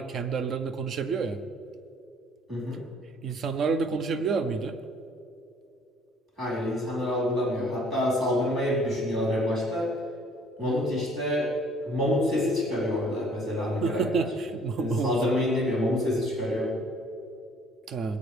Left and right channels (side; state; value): both; normal; correlation 0.57